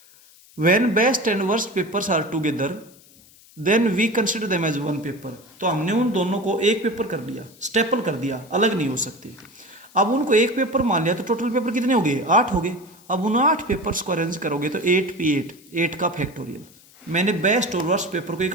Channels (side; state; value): left; noise; hiss, 26 dB below the sound